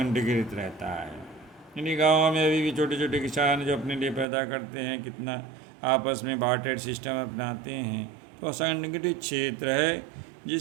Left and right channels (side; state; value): left; drops out; at 4.2 s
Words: रहता है। यानी गाँव में अभी भी छोटे छोटे किसान जो अपने लिए पैदा करते हैं, कितना आपस में बार्टर सिस्टम अपनाते हैं, तो संगठित क्षेत्र है,